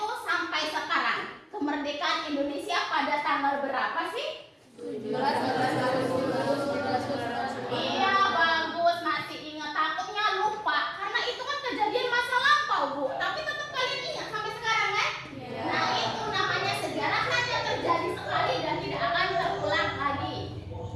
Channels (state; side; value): identical; both; correlation 1.00